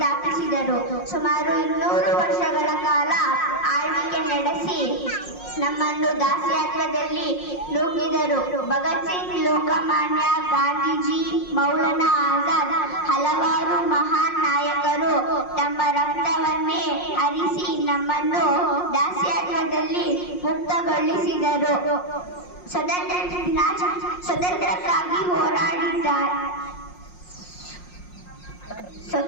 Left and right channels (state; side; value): late; right; 5.6 ms